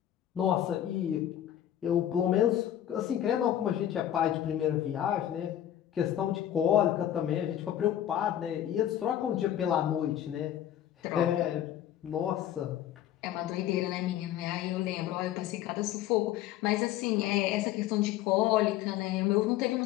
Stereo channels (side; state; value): right; quieter; 11.6 dB